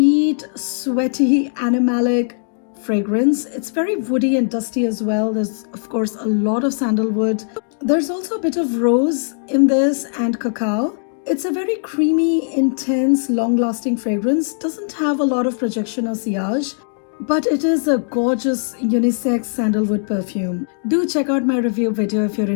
sweaty, animalic fragrance. It's very woody and dusty as well. There's, of course, a lot of sandalwood. There's also a bit of rose in this and cacao. It's a very creamy, intense, long-lasting fragrance. Doesn't have a lot of projection or sillage, but it is a gorgeous unisex sandalwood perfume. Do check out my review video if you're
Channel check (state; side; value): silent; right; digital silence